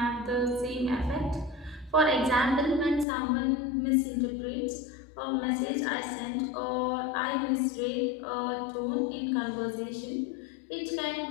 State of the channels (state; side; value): drops out; right; at 3.1 s